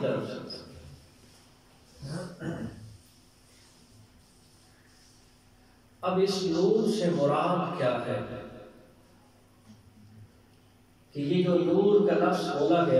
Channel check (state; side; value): identical; both; correlation 1.00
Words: طرف سے. اب اس نور سے مراد کیا ہے؟ کہ یہ جو نور کا لفظ بولا